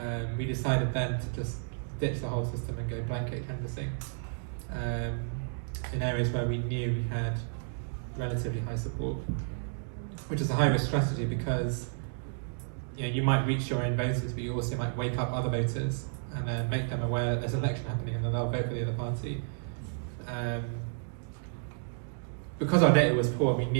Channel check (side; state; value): left; silent; digital silence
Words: we decided then to just ditch the whole system and go blanket canvassing in areas where we knew we had relatively high support, which is a high-risk strategy because you might reach your own voters, but you also might wake up other voters and then make them aware that there's an election happening and then they'll vote for the other party. Because our data was poor, we